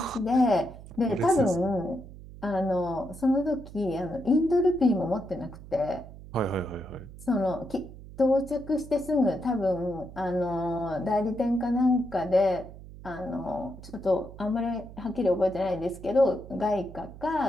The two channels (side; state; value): right; noise; hum, 16 dB below the sound